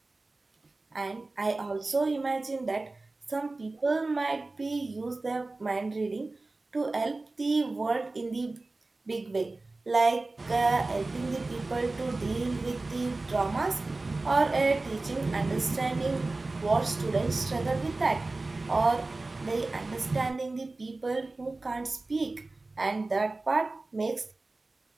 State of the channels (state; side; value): quieter; left; 3.2 dB